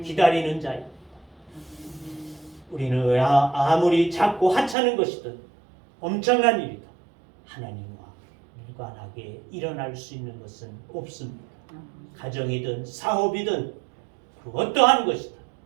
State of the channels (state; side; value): drops out; left; at 4.8 s